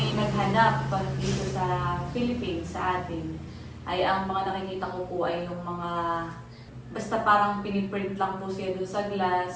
naghanap dito sa Philippines, sa atin. Ay ang mga nakikita ko po ay yung mga, basta parang piniprint lang po siya doon sa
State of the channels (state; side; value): identical; both; correlation 1.00